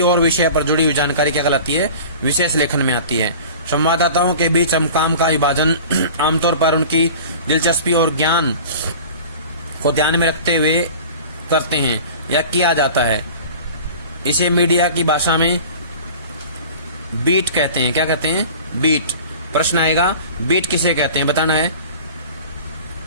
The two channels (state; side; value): inverted; both; correlation -0.40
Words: और विषय पर जुड़ी हुई जानकारी क्या कहलाती है? विशेष लेखन में आती है। संवाददाताओं के बीच हम काम का विभाजन आमतौर पर उनकी दिलचस्पी और ज्ञान को ध्यान में रखते हुए करते हैं या किया जाता है। इसे मीडिया की भाषा में बीट कहते हैं। क्या कहते हैं? बीट। प्रश्न आएगा, बीट किसे कहते हैं? बताना है।